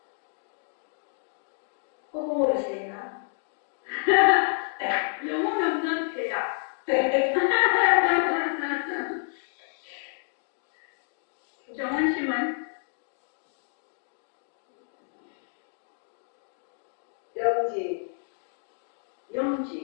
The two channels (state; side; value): silent; right; digital silence